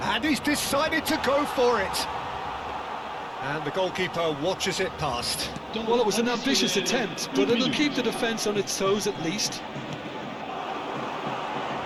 he's decided to go for it. And the goalkeeper watches it past. Well, it was an ambitious attempt, but it'll keep the defence on its toes at least.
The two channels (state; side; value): identical; both; correlation 1.00